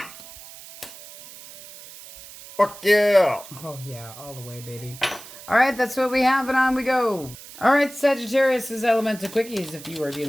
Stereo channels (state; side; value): noise; right; hiss, 17 dB below the sound